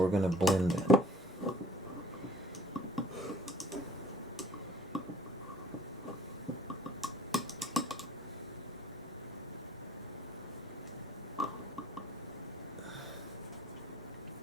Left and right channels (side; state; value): both; normal; correlation 0.53